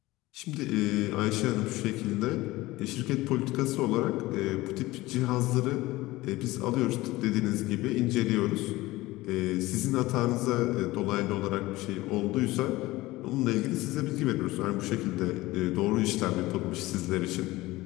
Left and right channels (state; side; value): quieter; right; 19.0 dB